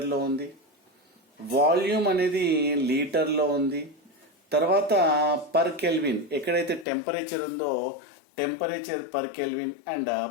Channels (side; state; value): right; drops out; at 6.9 s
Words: లో ఉంది, వాల్యూమ్ అనేది లీటర్ లో ఉంది, తర్వాత పర్ కెల్విన్ ఎక్కడైతే టెంపరేచర్ ఉందో temperature per kelvin and